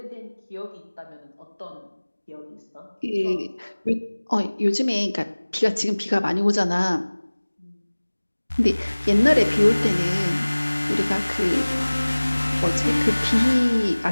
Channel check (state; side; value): inverted; both; correlation -1.00